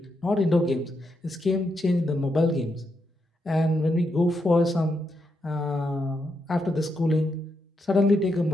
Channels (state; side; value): normal; both; correlation 0.82